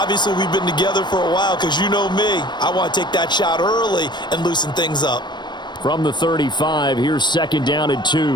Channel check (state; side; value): late; right; 0.22 ms